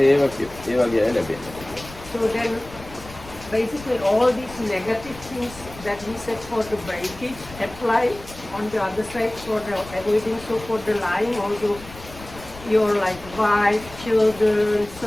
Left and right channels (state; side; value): noise; left; rumble, 17 dB below the sound